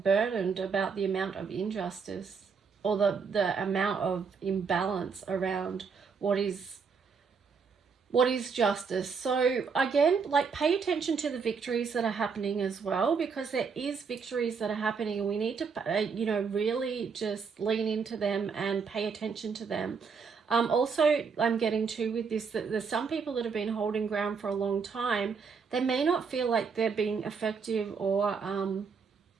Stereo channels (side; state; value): left; quieter; 5.6 dB